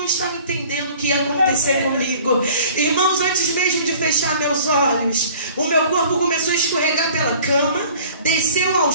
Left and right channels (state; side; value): inverted; both; correlation -0.48